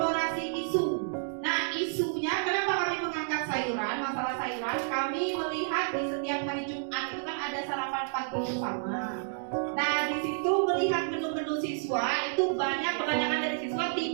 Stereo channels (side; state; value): left; silent; digital silence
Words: isu. Nah, isunya kenapa kami mengangkat sayuran, masalah sayuran? Kami melihat di setiap hari Jumat itu kan ada sarapan pagi bersama. Nah, di situ melihat menu-menu siswa itu kebanyakan dari siswa